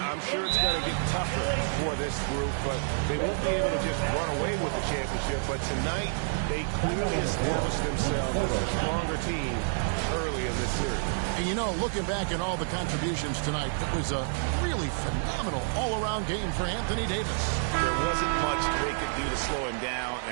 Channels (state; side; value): silent; left; digital silence